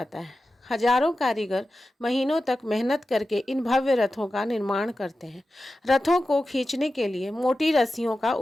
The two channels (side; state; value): both; normal; correlation 0.93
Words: है। हजारों कारीगर महीनों तक मेहनत करके इन भव्य रथों का निर्माण करते हैं। रथों को खींचने के लिए मोटी रस्सियों का